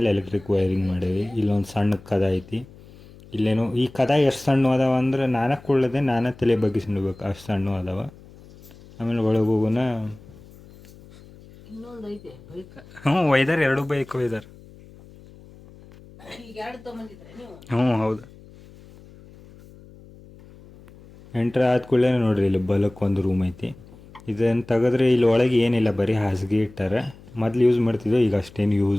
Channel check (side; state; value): left; noise; hum, 22 dB below the sound